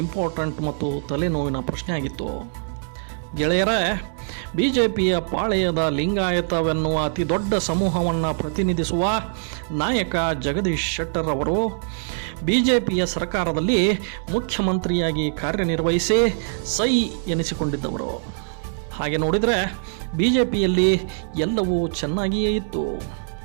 ಇಂಪಾರ್ಟೆಂಟ್ ಮತ್ತು ತಲೆನೋವಿನ ಪ್ರಶ್ನೆ ಆಗಿತ್ತು. ಗೆಳೆಯರೇ, BJPಯ ಪಾಳೆಯದ ಲಿಂಗಾಯತವೆನ್ನುವ ಅತಿ ದೊಡ್ಡ ಸಮೂಹವನ್ನು ಪ್ರತಿನಿಧಿಸುವ ನಾಯಕ ಜಗದೀಶ್ ಶೆಟ್ಟರ್ ಅವರು BJPಯ ಸರ್ಕಾರದಲ್ಲಿ ಮುಖ್ಯಮಂತ್ರಿಯಾಗಿ ಕಾರ್ಯನಿರ್ವಹಿಸಿ ಸೈ ಎನಿಸಿಕೊಂಡಿದ್ದವರು. ಹಾಗೆ ನೋಡಿದರೆ BJPಯಲ್ಲಿ ಎಲ್ಲವೂ ಚೆನ್ನಾಗಿಯೇ ಇತ್ತು.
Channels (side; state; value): left; silent; 63 dB below the other